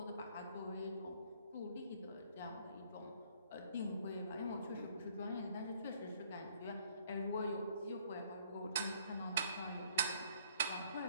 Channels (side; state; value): both; inverted; correlation -0.63